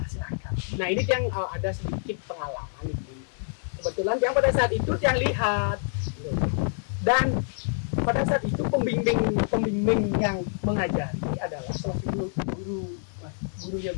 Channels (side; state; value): right; silent; digital silence